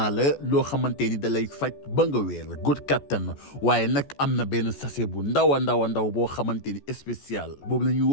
la loo xamante ni da lay faj ba nga wéer góor kattan waaye nag am na benn sachet bu ndaw a ndaw boo xamante ni spécial boobu la ñuy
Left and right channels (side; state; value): right; late; 14 ms